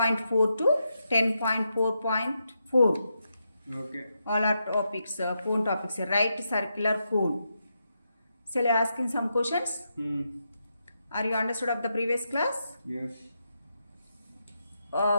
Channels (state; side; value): inverted; both; correlation -0.84